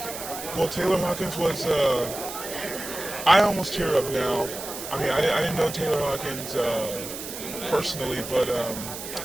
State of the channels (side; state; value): right; noise; hiss, 9 dB below the sound